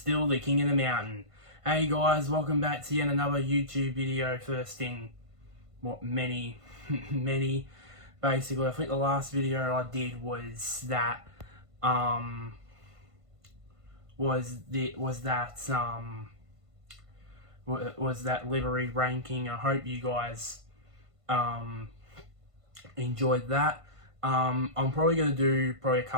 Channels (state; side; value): late; left; 1.5 ms